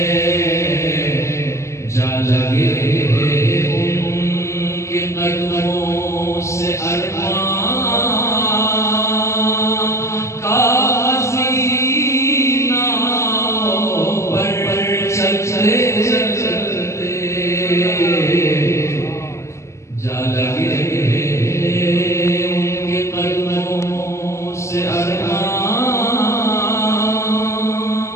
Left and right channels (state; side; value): late; right; 0.14 ms